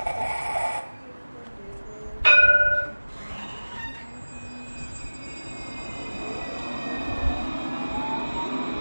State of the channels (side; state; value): both; inverted; correlation -1.00